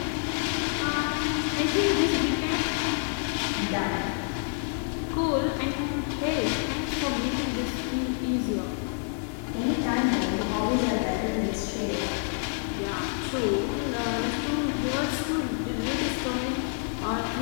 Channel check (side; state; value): right; silent; 56 dB below the other